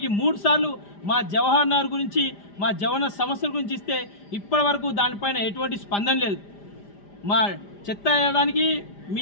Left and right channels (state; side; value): late; right; 5.0 ms